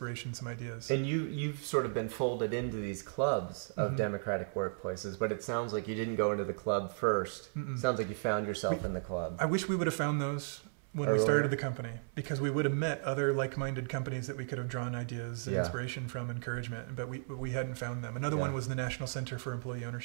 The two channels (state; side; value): silent; left; 54 dB below the other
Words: some ideas. And you've sort of been folded into these clubs of democratic workplaces, but it sounds like you didn't go into the club first. Sounds like you found yourself in the club. I wish we would have found those when we started the company, because we would have met other like-minded companies that we could have drawn ideas and inspiration from, encouragement, but we hadn't found them. Another one was the National Center for Employee